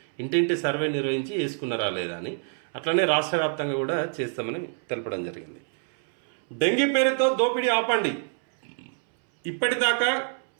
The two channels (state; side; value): silent; left; 61 dB below the other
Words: ఇంటింటి సర్వే నిర్వహించి వేసుకున్నారా లేదా అని. అట్లనే రాష్ట్ర వ్యాప్తంగా కూడా చేస్తామని తెలపడం జరిగింది. డెంగీ పేరుతో దోపిడీ ఆపండి. ఇప్పటిదాకా